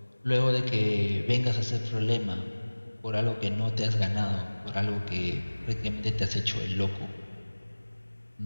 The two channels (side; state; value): both; inverted; correlation -1.00